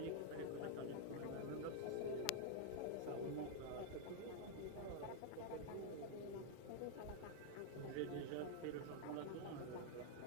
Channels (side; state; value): both; different; correlation -0.01